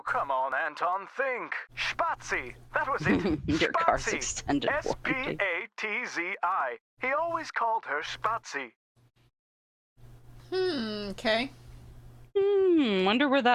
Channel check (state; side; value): identical; both; correlation 1.00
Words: come on, Anton, think. Spazi! That was it. Your car's Spazi. extended warranty. S-P-A-T-Z-I. He always called her Spazi. Okay. Wonder where